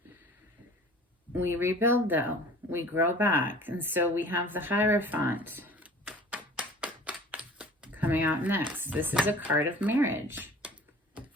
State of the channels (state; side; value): normal; both; correlation 0.45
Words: We rebuild though. We grow back. And so we have the Hierophant coming out next. This is a card of marriage.